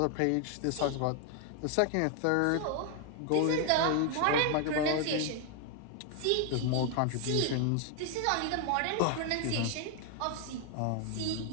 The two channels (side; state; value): both; different; correlation 0.00